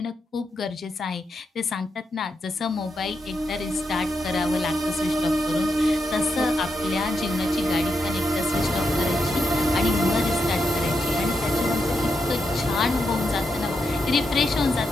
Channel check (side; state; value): both; normal; correlation 0.84